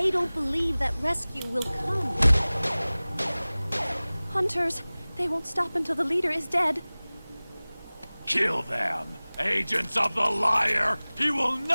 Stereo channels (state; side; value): inverted; both; correlation -0.99